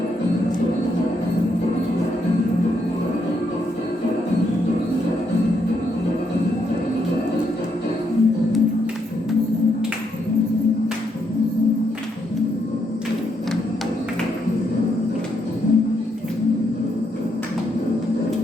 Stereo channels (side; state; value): both; normal; correlation 0.77